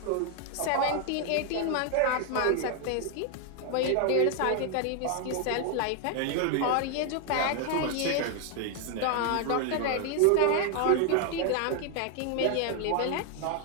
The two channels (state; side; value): different; both; correlation 0.00